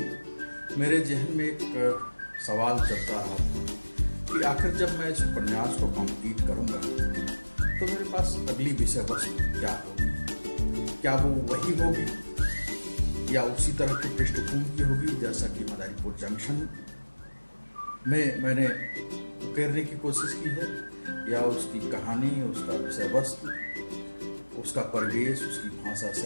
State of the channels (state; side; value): inverted; both; correlation -1.00